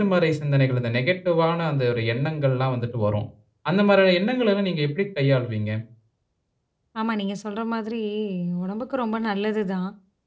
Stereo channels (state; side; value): identical; both; correlation 1.00